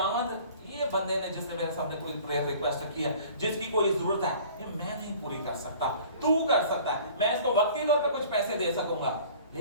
ये बंदे ने जिसने मेरे सामने कोई प्रेयर रिक्वेस्ट रखी है, जिसकी कोई जरूरत है, ये मैं नहीं पूरी कर सकता, तू कर सकता है। मैं इसको वक्ती तौर पे कुछ पैसे दे सकूंगा,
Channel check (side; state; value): both; inverted; correlation -0.48